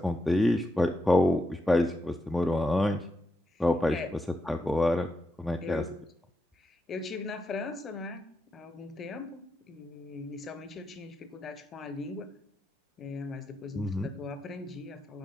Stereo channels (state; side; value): normal; both; correlation 0.85